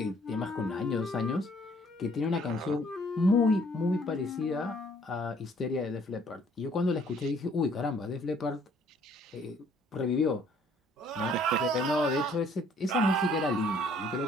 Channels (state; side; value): normal; both; correlation 0.61